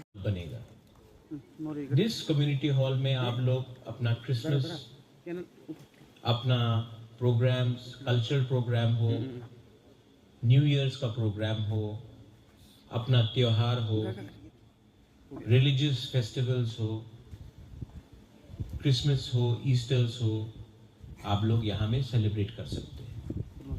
बनेगा जिस कम्युनिटी हॉल में आप लोग अपना क्रिसमस, अपना प्रोग्राम्स, कल्चरल प्रोग्राम हो, न्यू ईयर्स का प्रोग्राम हो, अपना त्योहार हो, रिलीजियस फेस्टिवल्स हो, क्रिसमस हो, ईस्टर्स हो, आप लोग यहाँ में सेलिब्रेट कर सकते हैं।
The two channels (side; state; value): both; identical; correlation 1.00